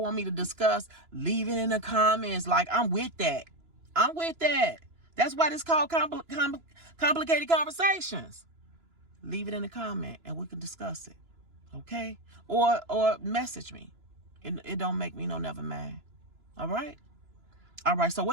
want me to discuss, leave it in the comments. Like, I'm with that. I'm with that. That's why it's called complicated conversations. Leave it in the comment and we can discuss it. Okay? Or message me. It don't make me no never mad. All right? All right, so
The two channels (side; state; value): left; late; 3.0 ms